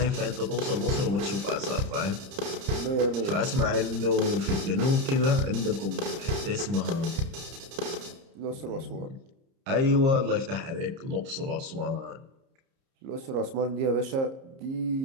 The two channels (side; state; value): left; late; 30 ms